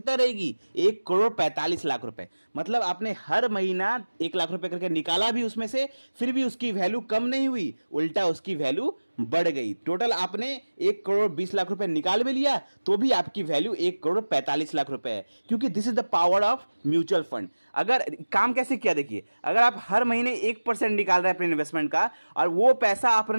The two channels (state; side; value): inverted; both; correlation -1.00